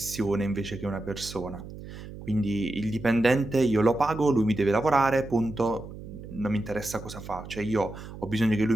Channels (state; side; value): noise; right; hum, 13 dB below the sound